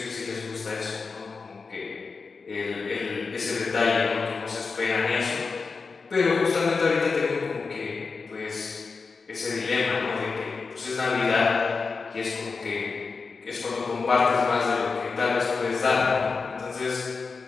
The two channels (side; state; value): right; quieter; 4.6 dB